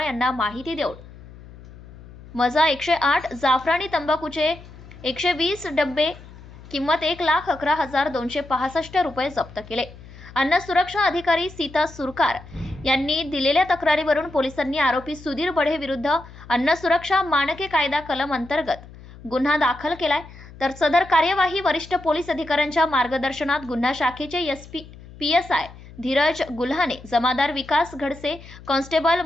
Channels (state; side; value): noise; left; hum, 19 dB below the sound